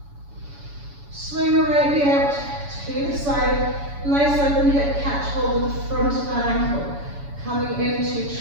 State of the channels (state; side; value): late; left; 7.1 ms